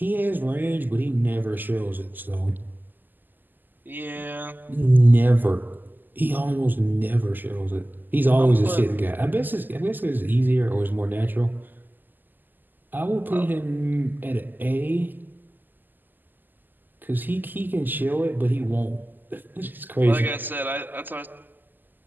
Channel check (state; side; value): late; left; 0.088 ms